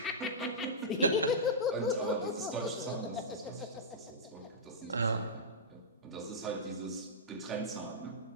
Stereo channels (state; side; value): normal; both; correlation -0.12